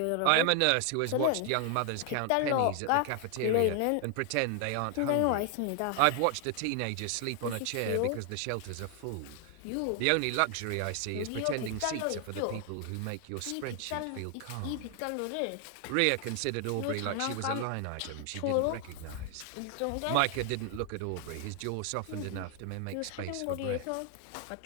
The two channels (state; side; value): different; both; correlation 0.00